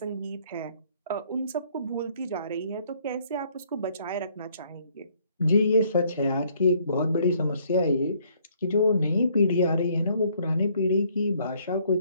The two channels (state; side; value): inverted; both; correlation -0.64